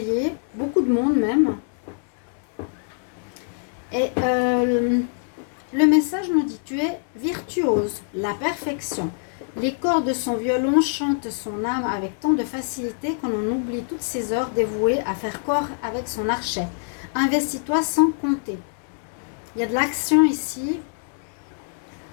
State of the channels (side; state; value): right; silent; digital silence